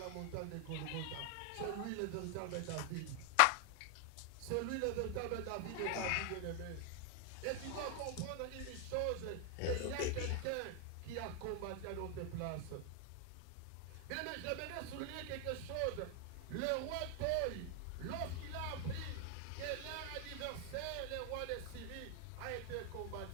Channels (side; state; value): both; different; correlation 0.00